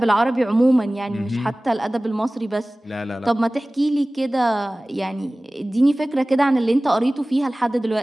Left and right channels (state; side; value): normal; both; correlation 0.98